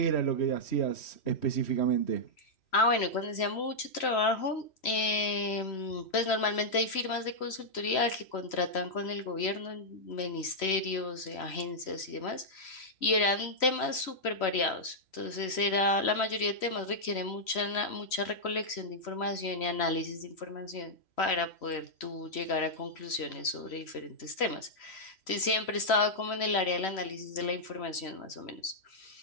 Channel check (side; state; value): right; late; 3.1 ms